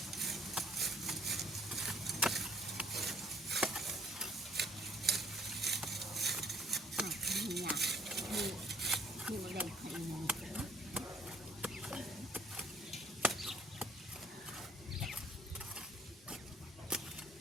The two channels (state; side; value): normal; both; correlation 0.62